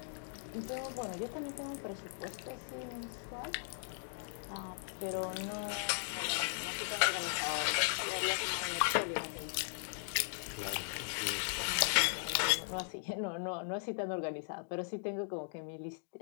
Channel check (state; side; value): silent; right; digital silence